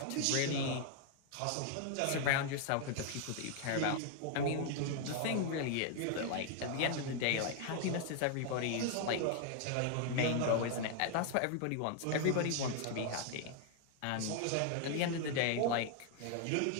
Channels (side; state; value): both; different; correlation 0.00